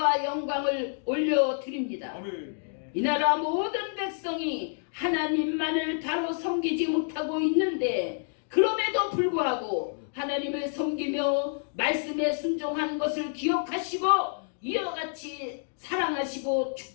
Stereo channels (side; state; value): right; silent; digital silence